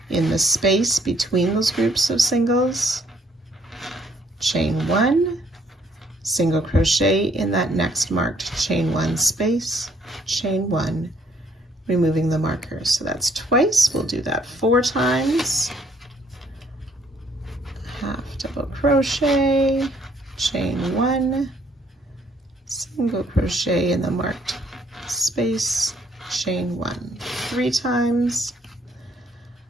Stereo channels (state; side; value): normal; both; correlation 0.66